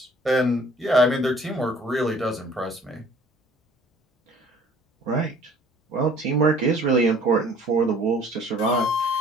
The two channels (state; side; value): normal; both; correlation 0.54